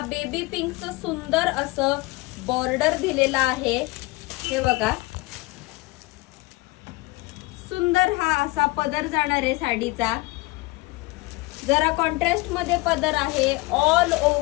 बेबी पिंकचं सुंदर असं बॉर्डर दिलेला आहे. हे बघा, सुंदर हा असा पदर जाणार आहे साडीचा. जरा कॉन्ट्रास्ट मध्ये पदर आहे. ऑल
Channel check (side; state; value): right; quieter; 22.8 dB